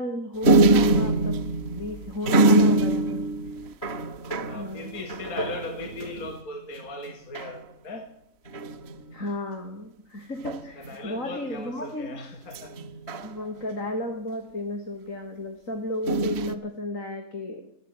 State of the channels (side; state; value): right; late; 3.1 ms